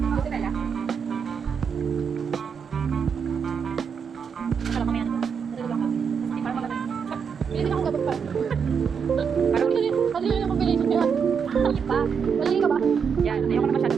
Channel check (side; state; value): left; quieter; 6.5 dB